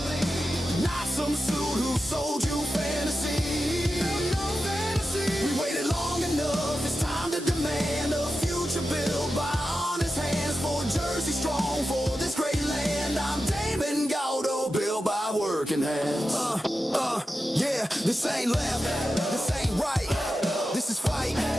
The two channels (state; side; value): normal; both; correlation 0.91